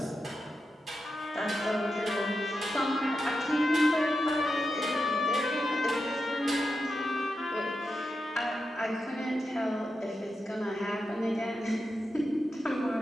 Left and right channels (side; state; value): both; normal; correlation 0.89